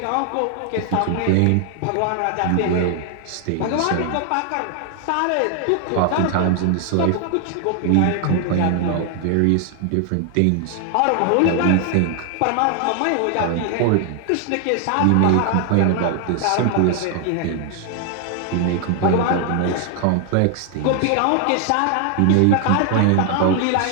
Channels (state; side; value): different; both; correlation 0.00